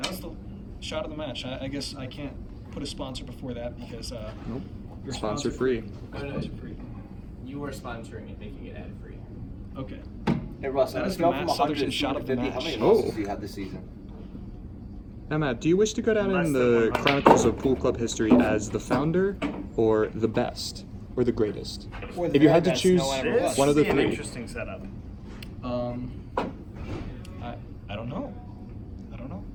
shot of the match. I guess I can't put a sponsor before that because Nope. you're Sponsor free. Sponsor free. You were sponsoring it, making it ad free. Okay. Hey Russ, That on a is the scale Matt from 100 Southerton to shot of the 250, how match. many Oh. losses do you have this season? Now, Matt, do you wish to go down Less in than the 100. Chronicles of Pool Club history as the founder, or the best, or the greatest? Or the If you very had to best choose no one ever This was. one of the would be an three. interesting setup. I don't know. I don't know.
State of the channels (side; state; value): both; identical; correlation 1.00